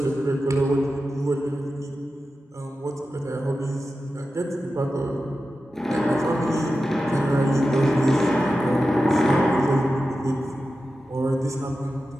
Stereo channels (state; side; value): normal; both; correlation 0.92